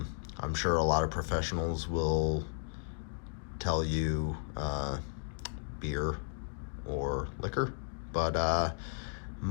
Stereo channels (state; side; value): silent; right; digital silence